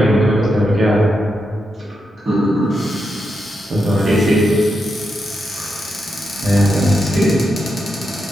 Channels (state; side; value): normal; both; correlation 0.85